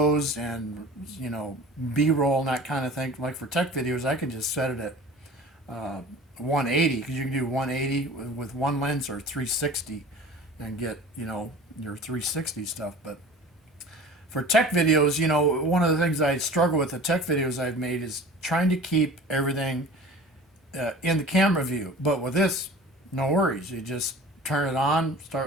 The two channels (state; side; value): normal; both; correlation 0.40